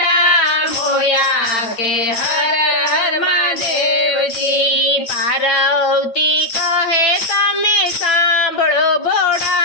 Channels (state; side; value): late; right; 8.9 ms